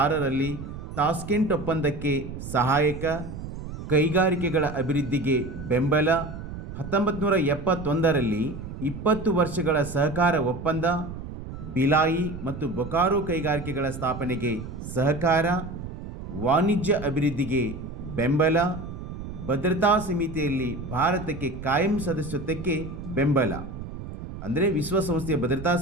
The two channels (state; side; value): noise; right; rumble, 10 dB below the sound